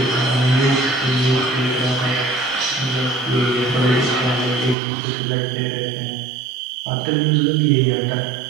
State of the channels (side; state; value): left; drops out; at 4.8 s